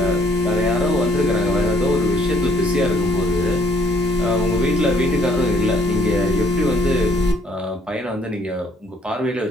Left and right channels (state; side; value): normal; both; correlation 0.64